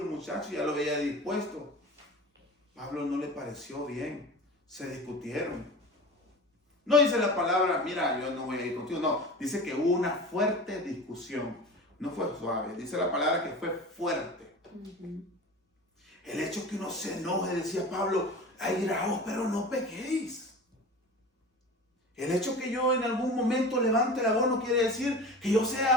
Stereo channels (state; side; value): normal; both; correlation 0.35